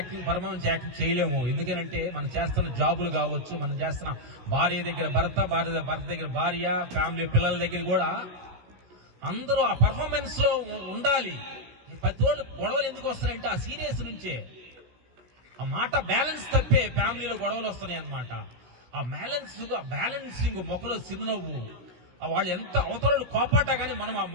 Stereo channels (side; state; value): left; late; 16 ms